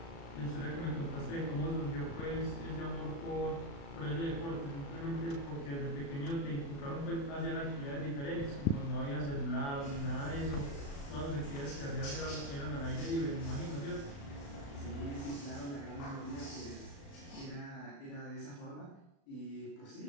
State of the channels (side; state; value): right; late; 36 ms